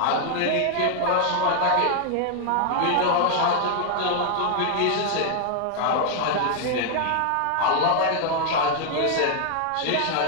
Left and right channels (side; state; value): both; different; correlation 0.00